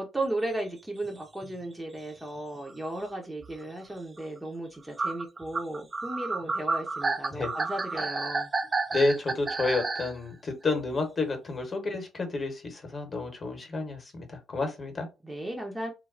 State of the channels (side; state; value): both; normal; correlation 0.85